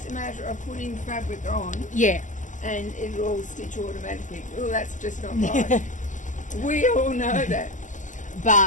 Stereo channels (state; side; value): late; right; 0.37 ms